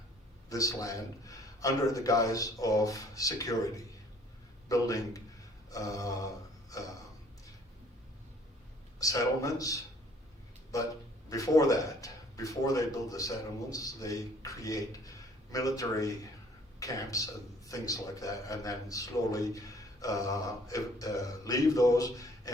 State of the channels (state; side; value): normal; both; correlation 0.58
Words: this land under the guise of security, building settlements. But before that, before they build the settlements, they create military camps and things like that, and then slowly leave those,